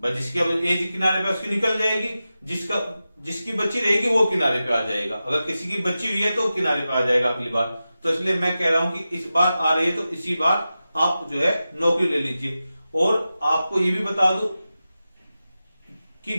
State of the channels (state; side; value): inverted; both; correlation -0.93